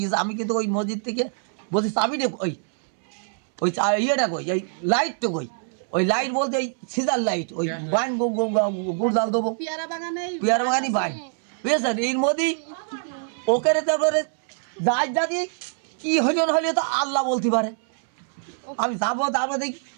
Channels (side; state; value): left; silent; 62 dB below the other